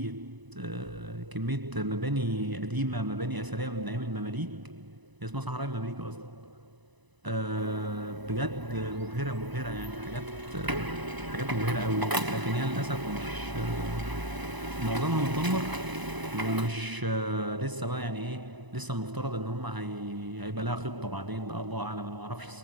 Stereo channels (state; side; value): late; left; 1.0 ms